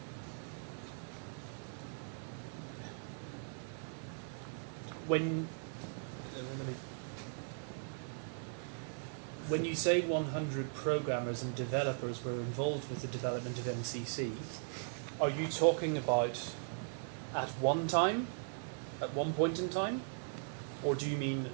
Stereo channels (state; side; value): silent; left; digital silence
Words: When you say 100 programmers and developers were involved with the development of MCC, are you talking about at one time, at one point in time, or do you mean